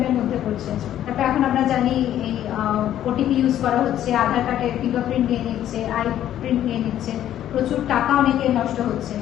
মধ্যে পড়ছে। তারপর এখন আমরা জানি এই ওটিপি ইউজ করা হচ্ছে, আধার কার্ডের ফিঙ্গারপ্রিন্ট নিয়ে নিচ্ছে, আই প্রিন্ট নিয়ে নিচ্ছে, প্রচুর টাকা অনেকে নষ্ট হচ্ছে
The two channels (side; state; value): right; quieter; 11.6 dB